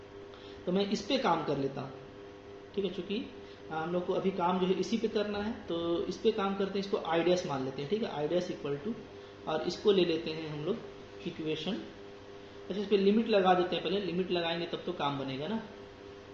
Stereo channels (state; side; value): identical; both; correlation 1.00